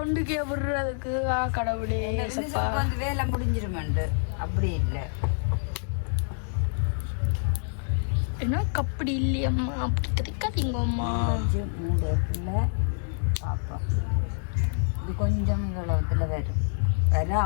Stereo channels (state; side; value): silent; right; digital silence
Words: ஒன்றுக்கே விடுறதுக்கு கடவுளே சப்பா வேலை முடிஞ்சிருமாண்டு. அப்படி இல்லை ஏன்னா அப்படி இல்லையம்மா. அப்படி கிடைக்காதீங்க அம்மா. மூடத்துல பாப்பா இது கொஞ்சம் இவ்வளவுத்துல வரும்.